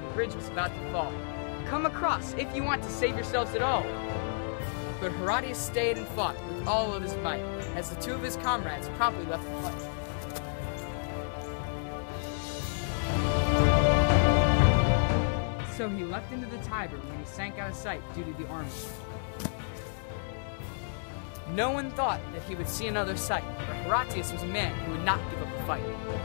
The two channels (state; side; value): silent; right; digital silence